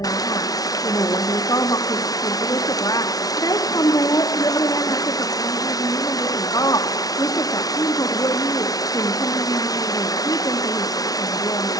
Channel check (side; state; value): right; late; 0.18 ms